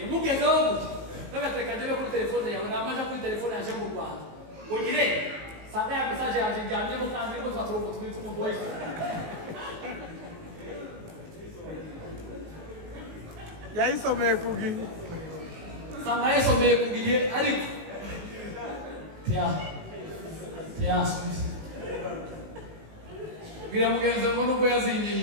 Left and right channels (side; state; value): left; late; 19 ms